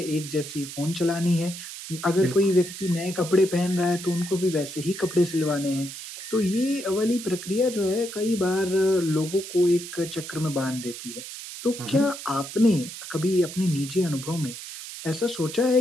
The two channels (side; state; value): right; noise; hiss, 11 dB below the sound